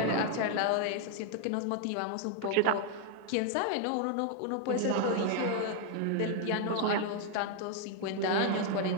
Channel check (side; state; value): both; different; correlation 0.00